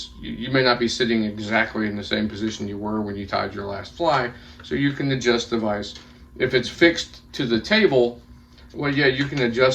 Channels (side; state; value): both; identical; correlation 1.00